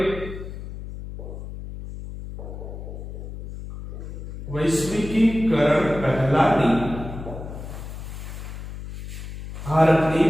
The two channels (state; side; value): noise; left; hum, 10 dB below the sound